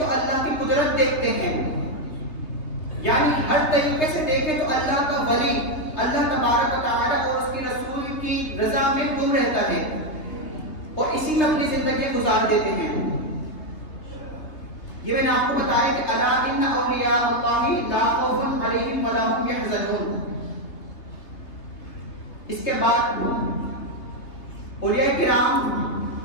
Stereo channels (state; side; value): late; right; 3.3 ms